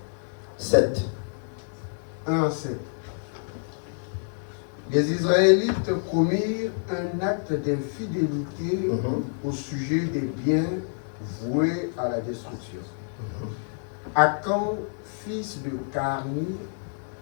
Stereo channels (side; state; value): right; silent; 60 dB below the other